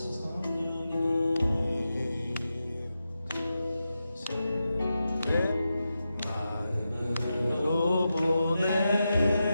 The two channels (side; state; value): both; inverted; correlation -0.90